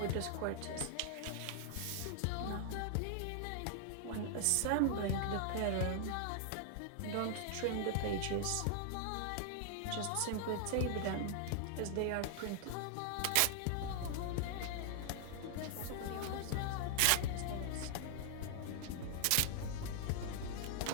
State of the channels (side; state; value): both; different; correlation 0.00